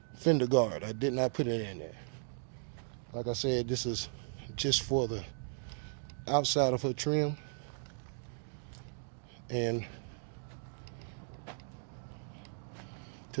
fender guard. I did not put it in there. Like I said, this is just for the outside of her trim, and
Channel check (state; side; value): silent; left; digital silence